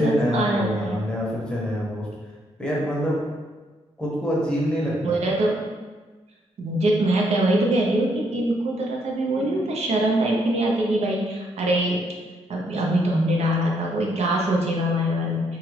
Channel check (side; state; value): both; normal; correlation 0.72